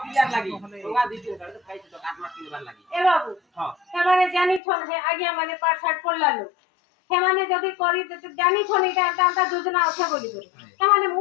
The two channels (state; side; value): drops out; right; at 4.6 s